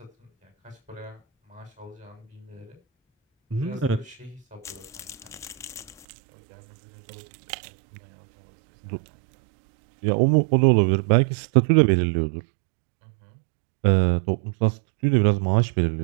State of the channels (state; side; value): drops out; left; at 6.1 s